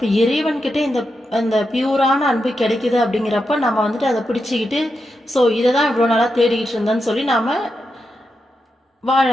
இறைவன்கிட்ட இந்த பியூரான அன்பு கிடைக்குது அப்படிங்கிறப்ப நம்ம அதை பிடிச்சிக்கிட்டு ஸோ இதை தான் இவ்வளோ நாளாக தேடிக்கிட்டு இருந்தேன்னு சொல்லி நாம் வாழ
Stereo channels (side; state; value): both; normal; correlation 0.87